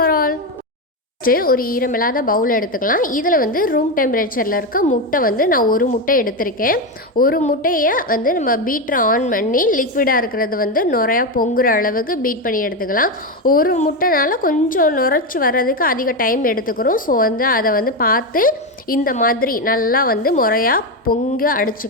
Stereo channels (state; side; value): normal; both; correlation 0.11